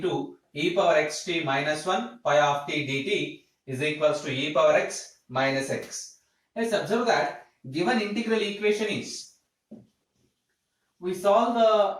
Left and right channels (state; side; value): identical; both; correlation 1.00